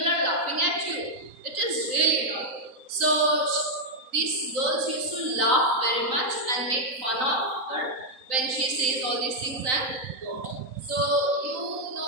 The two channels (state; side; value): late; left; 3.9 ms